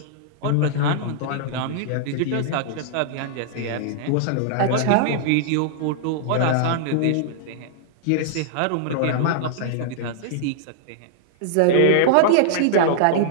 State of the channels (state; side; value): different; both; correlation -0.01